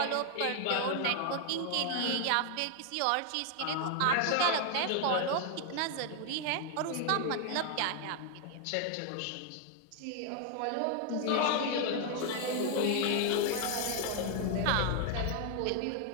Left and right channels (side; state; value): both; different; correlation 0.00